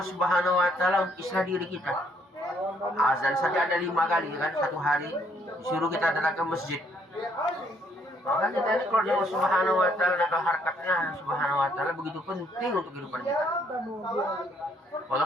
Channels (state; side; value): normal; both; correlation 0.68